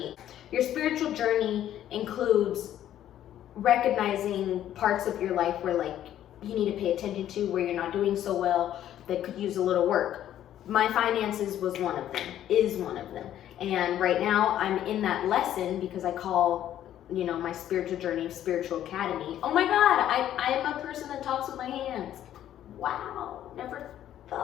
your spiritual journey includes recognizing parts of your life where like you need to pay attention to, where you're not doing so well, that could use a little work. My finances was one of them, is one of them. And right now I'm in that lesson because I call, my spiritual journey, Spiritual Academy. Oh my God, I am a person that talks with my hands. Wow, never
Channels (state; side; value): quieter; right; 11.6 dB